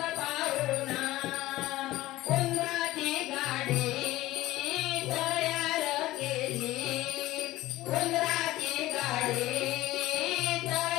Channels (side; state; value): right; quieter; 16.8 dB